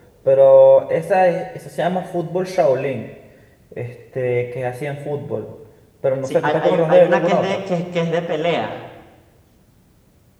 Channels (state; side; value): identical; both; correlation 1.00